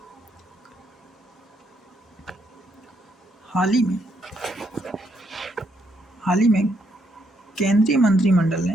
हाल ही में केंद्रीय मंत्रिमंडल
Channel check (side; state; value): both; normal; correlation 0.74